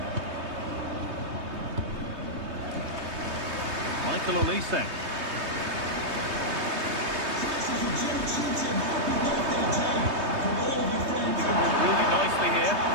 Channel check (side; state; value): left; late; 3.2 ms